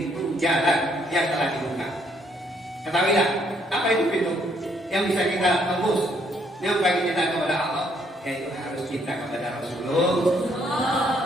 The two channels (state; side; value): normal; both; correlation 0.69